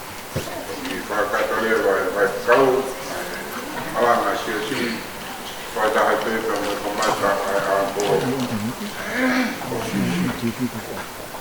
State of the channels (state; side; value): identical; both; correlation 1.00